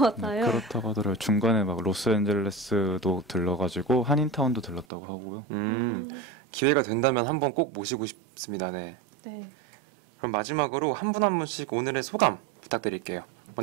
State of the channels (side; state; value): left; drops out; at 4.9 s